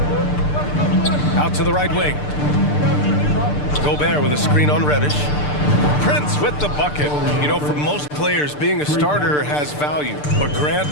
Out to the right wing. Gobert with a screen on Reddish. Prince with the bucket. You know, for most players, being a starter has value. But Grant,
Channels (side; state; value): right; late; 6.7 ms